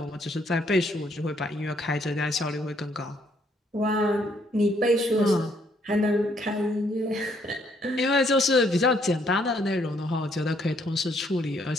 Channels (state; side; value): normal; both; correlation 0.69